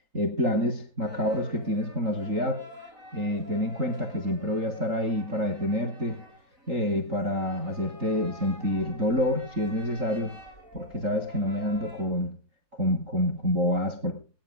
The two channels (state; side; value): late; left; 4.0 ms